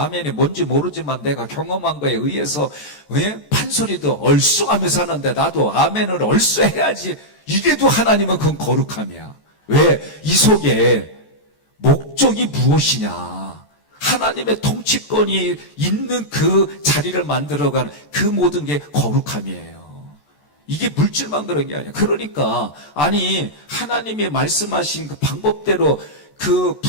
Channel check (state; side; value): late; right; 14 ms